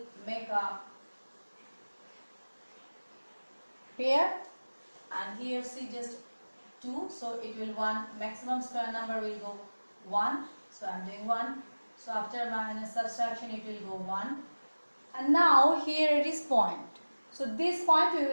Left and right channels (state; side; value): inverted; both; correlation -1.00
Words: make a pair, and here see just 2, so it will 1, maximum square number will go 1, so I am doing 1. So after minus subtraction it will go 1, and now here it is point. So this point we